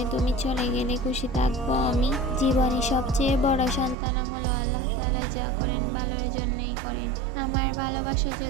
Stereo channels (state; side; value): drops out; left; at 4.0 s